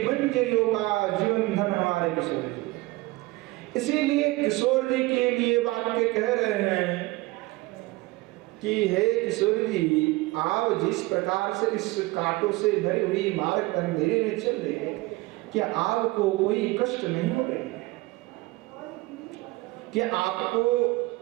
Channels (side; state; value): left; quieter; 21.2 dB